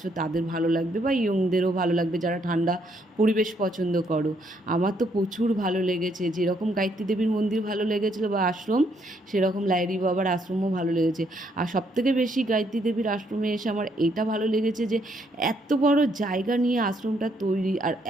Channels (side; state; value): both; normal; correlation 0.72